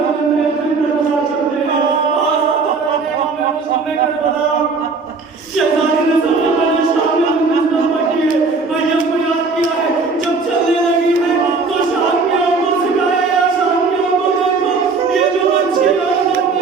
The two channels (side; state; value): left; quieter; 4.3 dB